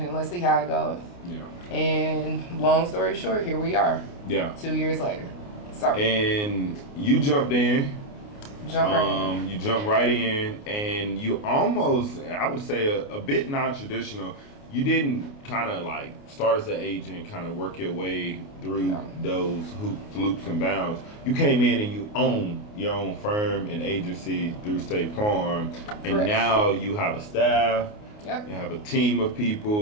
and let's see how it goes. Yeah. And long story short, here we are. Yeah. 2 years later. Sorry. And you jumped in. You jumped right in, and you almost, I would say, a bit non-traditional. You didn't kind of like start as an agent, kind of work your way through those hoops, loops, and bounds. You came in and you own your own firm and agency through State Farm, and now you have a staff. Yep. You have a team of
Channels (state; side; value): late; right; 29 ms